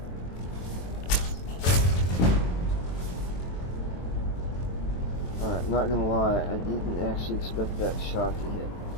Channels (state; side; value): late; right; 23 ms